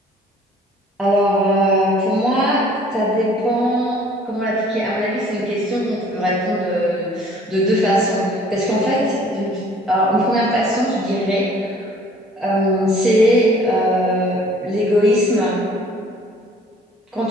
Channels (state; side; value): normal; both; correlation 0.54